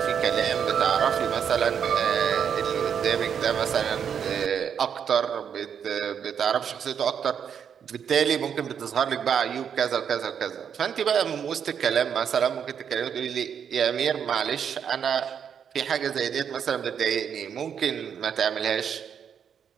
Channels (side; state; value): left; quieter; 7.8 dB